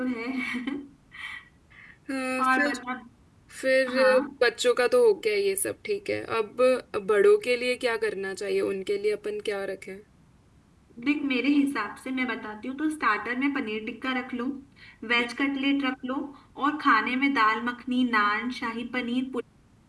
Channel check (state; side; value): identical; both; correlation 1.00